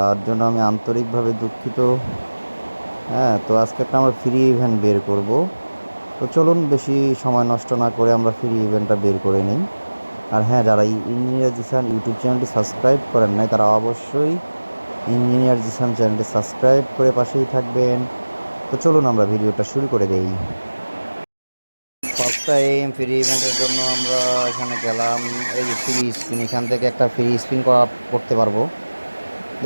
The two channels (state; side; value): inverted; both; correlation -1.00